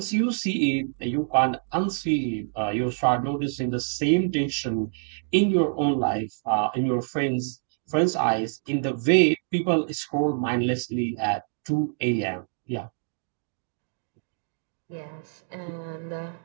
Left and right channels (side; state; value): left; silent; digital silence